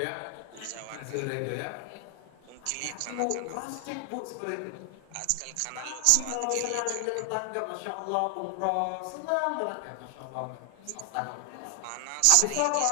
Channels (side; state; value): both; different; correlation 0.00